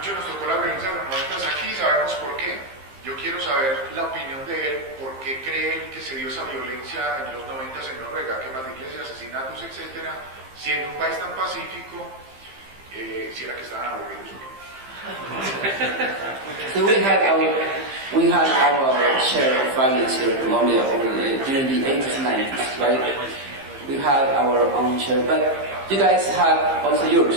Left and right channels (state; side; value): late; left; 15 ms